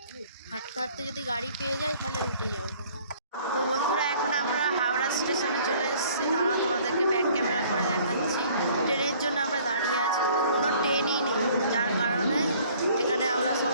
হাঁটতে হাঁটতে যদি গাড়ি পেয়ে যাই তাহলে উঠে যাবো। তো বন্ধুরা, এখন আমরা হাওড়া স্টেশনে চলে এসেছি। তারা তোমাদেরকে ব্যাক ক্যামেরা করে দেখাচ্ছি। ট্রেনের জন্য আমরা দাঁড়িয়ে আছি, কোনো ট্রেনই নেই, যার কারণে এখানে আমরা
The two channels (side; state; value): both; inverted; correlation -0.56